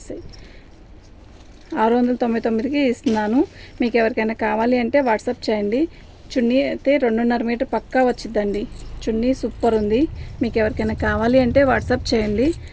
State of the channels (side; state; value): both; identical; correlation 1.00